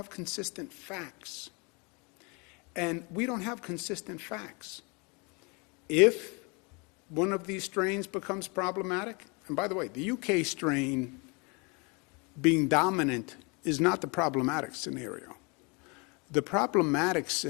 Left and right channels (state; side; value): quieter; right; 30.8 dB